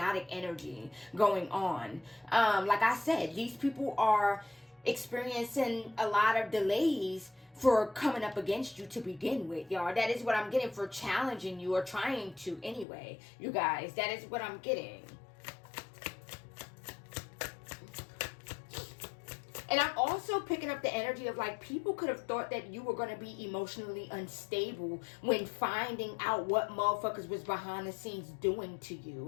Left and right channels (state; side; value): drops out; right; at 12.9 s